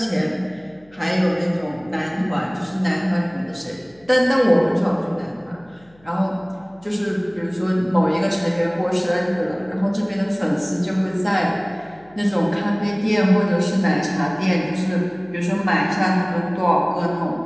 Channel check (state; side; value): noise; left; hum, 30 dB below the sound